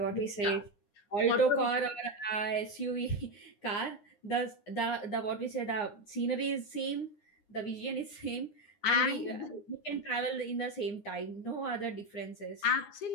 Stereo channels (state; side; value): late; right; 9.7 ms